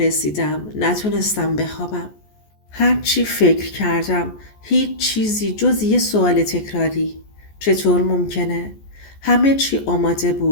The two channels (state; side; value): late; right; 14 ms